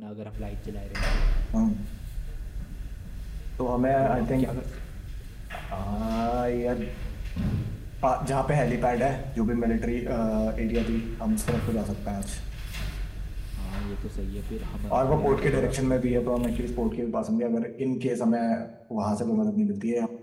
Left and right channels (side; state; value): both; identical; correlation 1.00